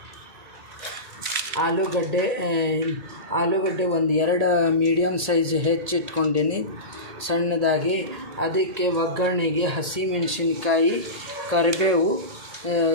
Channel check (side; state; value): left; late; 1.8 ms